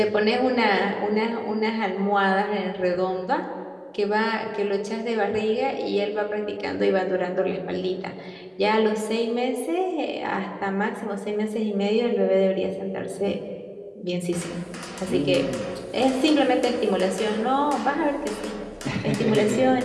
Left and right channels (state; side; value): identical; both; correlation 1.00